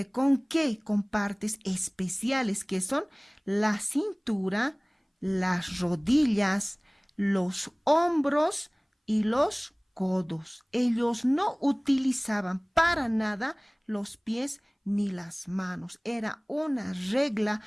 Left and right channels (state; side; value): identical; both; correlation 1.00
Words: ¿con qué? Con partes especiales que son la cintura, las rodillas, los hombros y los codos. Ellos no utilizaban para nada los pies ni las manos. Era una regla